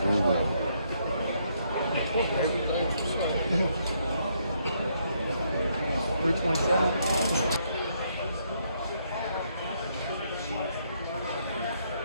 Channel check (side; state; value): both; inverted; correlation -0.73